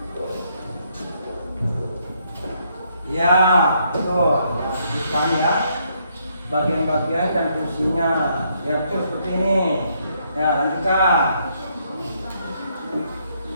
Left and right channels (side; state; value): both; inverted; correlation -0.73